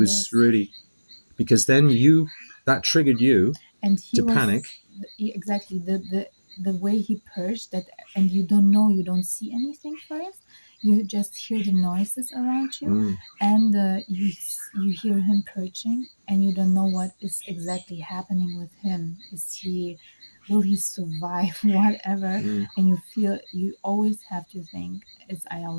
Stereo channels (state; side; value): inverted; both; correlation -1.00